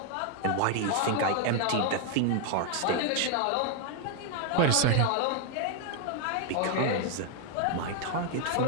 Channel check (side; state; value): both; different; correlation 0.00